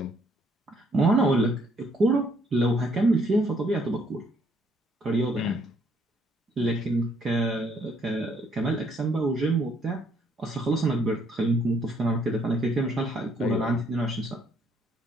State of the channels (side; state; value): both; normal; correlation 0.67